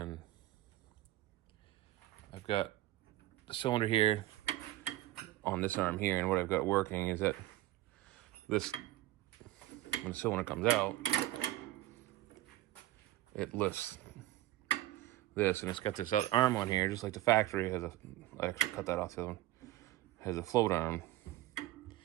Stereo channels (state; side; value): quieter; left; 15.6 dB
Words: I've got the cylinder here on this arm here, and what I've got working is that this, when the cylinder comes out, it lifts this, and it's got this other arm on here, just like the factory has I actually cut that off the other one, has a float arm.